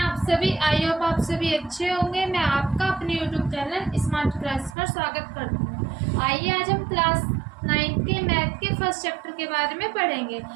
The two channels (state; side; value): drops out; left; at 4.8 s